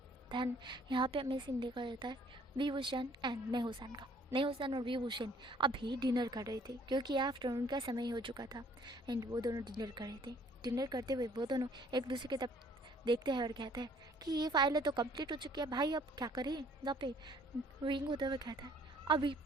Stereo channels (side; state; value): both; normal; correlation 0.59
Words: धन यहाँ पे हमें सीन देखा जाता है विभूषण एंड नेहुसन का। नेहुसन और विभूषण अभी डिनर कर रहे थे, क्योंकि आफ्टरनून का समय हो चुका था, एंड वो दोनों डिनर कर रहे थे। डिनर करते हुए वो दोनों एक दूसरे की तरफ देखते हैं और कहते हैं कि ये फाइलें तो कंप्लीट हो चुकी है भाई, अब क्या करें। यहाँ पे विंग होते हुए कहता है अभी